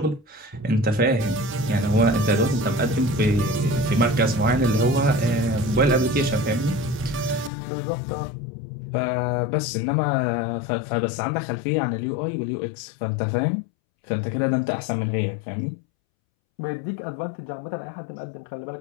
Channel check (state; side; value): drops out; right; at 7.5 s